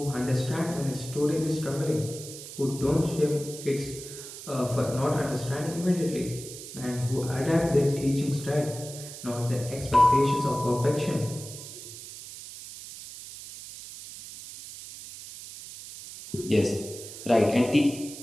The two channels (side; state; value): right; noise; hiss, 13 dB below the sound